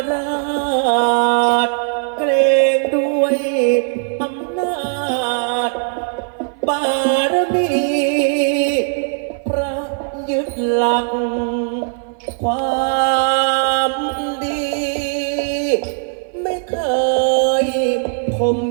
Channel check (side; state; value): left; silent; 57 dB below the other